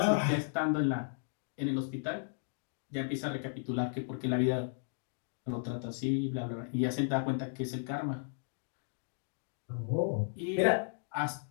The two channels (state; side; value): silent; right; digital silence